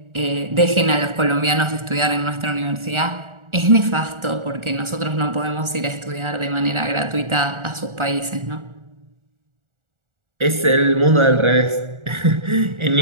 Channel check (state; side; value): late; left; 1.4 ms